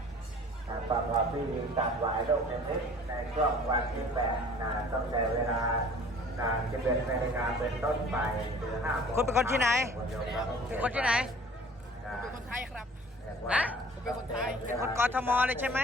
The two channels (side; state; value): both; normal; correlation 0.49